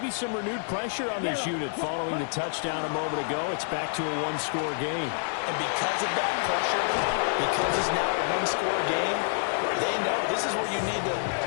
some renewed pressure on this unit following the touchdown a moment ago. It's back to a 1-score game. And because of that pressure, because it's now a 1-score game, they know this is where you need to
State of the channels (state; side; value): silent; right; digital silence